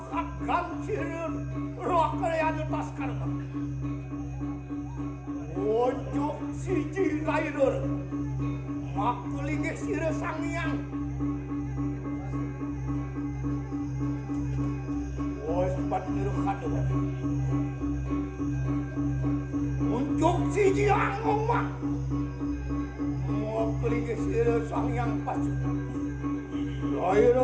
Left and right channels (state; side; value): identical; both; correlation 1.00